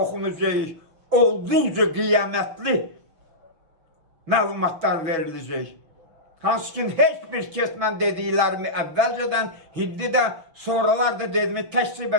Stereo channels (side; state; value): left; late; 6.3 ms